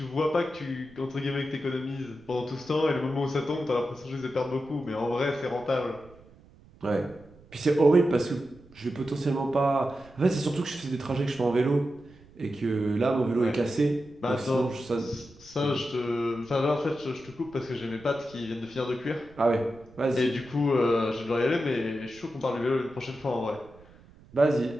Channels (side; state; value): right; noise; rumble, 24 dB below the sound